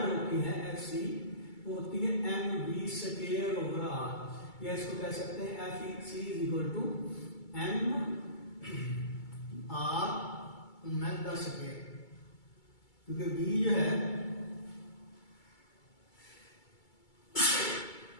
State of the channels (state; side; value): late; right; 2.3 ms